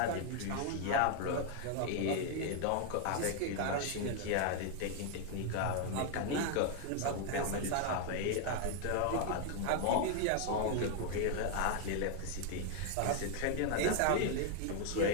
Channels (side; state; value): both; different; correlation 0.00